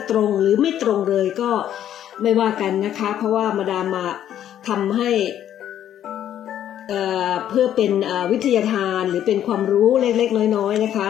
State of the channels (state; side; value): quieter; right; 10.8 dB